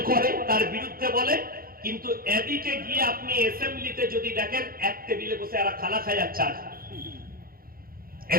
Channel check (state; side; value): late; left; 0.42 ms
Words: করে, তার বিরুদ্ধে বলে, কিন্তু এদিকে গিয়ে আপনি অ্যাসেম্বলিতে যদি দেখেন এক টেবিলে বসে এরা খানা খায় আর চা খায়।